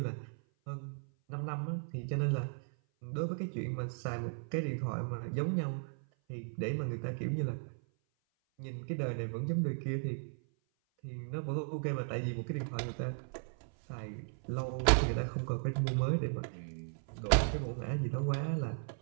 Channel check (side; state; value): left; silent; 54 dB below the other